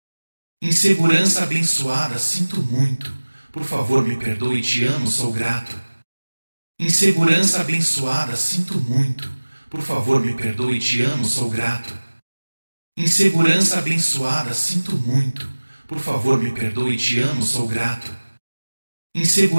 Insegurança abençoada, sinto muito. Por favor, me perdoe, te amo, sou grato. Insegurança abençoada, sinto muito. Por favor, me perdoe, te amo, sou grato. Insegurança abençoada, sinto muito. Por favor, me perdoe, te amo, sou grato.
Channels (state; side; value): inverted; both; correlation -1.00